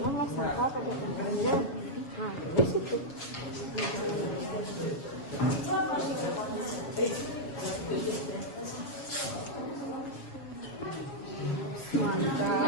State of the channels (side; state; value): right; late; 7.2 ms